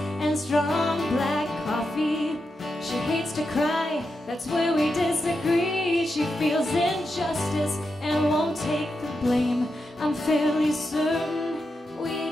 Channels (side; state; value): both; normal; correlation 0.87